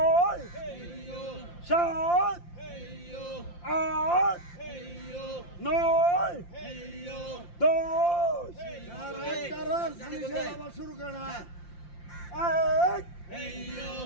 সাত আট নয় দশ। আবার শুরু করে না। এক দুই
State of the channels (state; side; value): late; right; 5.8 ms